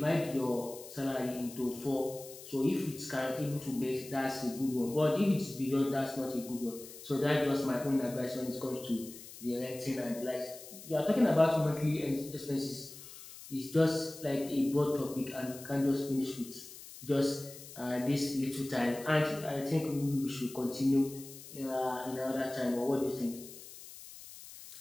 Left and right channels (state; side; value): noise; left; hiss, 15 dB below the sound